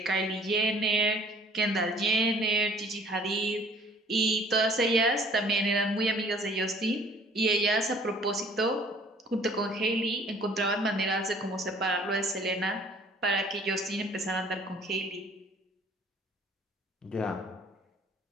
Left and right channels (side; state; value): both; normal; correlation 0.54